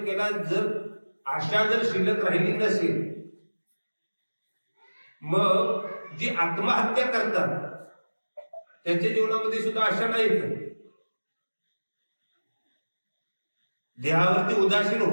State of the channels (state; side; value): inverted; both; correlation -1.00